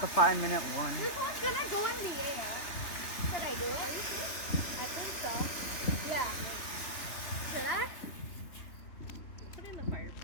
the 5-minute one. This one's gonna go in the air. Should I do it? I think so. Yeah. Should I? Put it in the fire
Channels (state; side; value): late; right; 3.3 ms